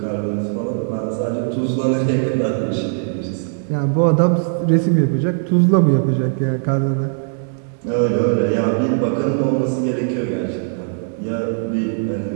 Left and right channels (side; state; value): left; silent; digital silence